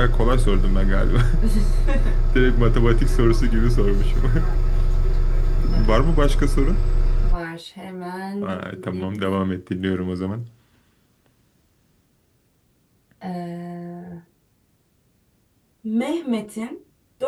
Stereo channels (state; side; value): identical; both; correlation 1.00